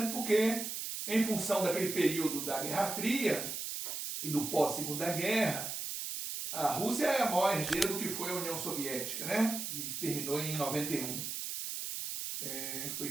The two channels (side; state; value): right; noise; hiss, 4 dB below the sound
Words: porque, em função daquele período da Guerra Fria e do pós-Segunda Guerra, a Rússia é a maior herdeira do que foi a União Soviética, né? E terminou em 91. Foi